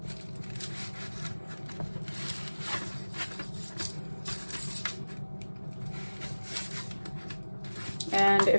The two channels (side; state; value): both; inverted; correlation -1.00